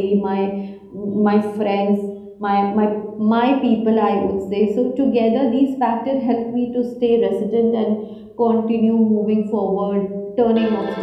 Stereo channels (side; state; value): both; identical; correlation 1.00